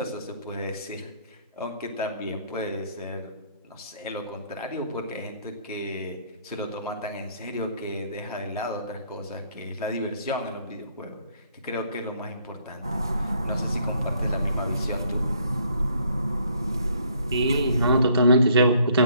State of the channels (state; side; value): inverted; both; correlation -0.65